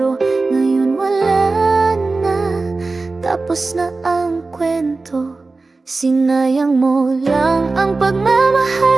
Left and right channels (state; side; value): quieter; left; 3.6 dB